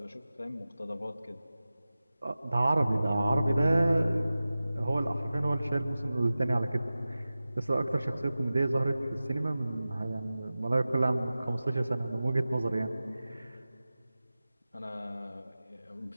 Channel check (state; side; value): inverted; both; correlation -0.96